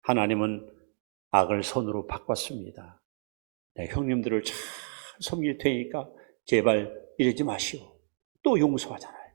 하나님은 악을 선으로 바꿨습니다. 네, 형님들을 잘 섬길 테니까 제발 이러지 마시오. 또 용서하잖아요.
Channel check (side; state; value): left; silent; 58 dB below the other